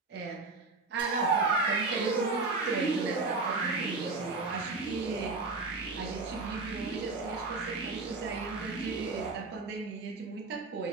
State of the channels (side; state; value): left; quieter; 3.7 dB